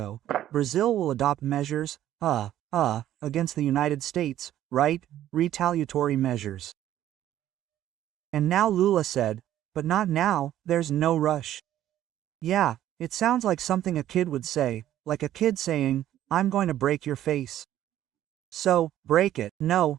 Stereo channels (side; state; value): left; quieter; 12.4 dB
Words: Brazil will adopt measures, against the United States, right? Retaliatory measures. And now Lula said, but not now, there's no rush. Yeah, it sounds like something a kid would say, like a kid saying, I'm going to break your face. So, break it.